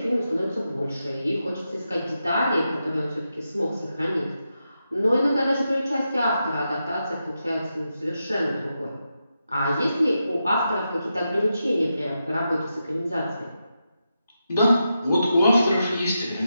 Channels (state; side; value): inverted; both; correlation -0.87